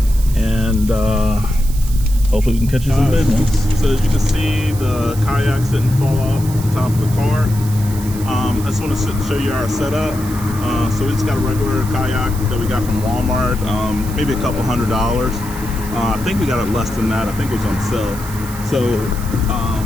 and hopefully we can catch you some business. So as you can see, the kayaks didn't fall off the top of the car. I just want to show you our setup. So we just got a regular kayak that we got from Walmart, maybe a couple $100. I think we got it less than that. I think it was on sale. So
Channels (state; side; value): noise; right; hiss, 14 dB below the sound